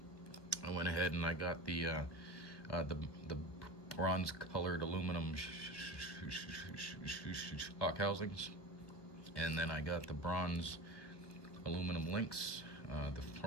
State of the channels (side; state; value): right; late; 1.4 ms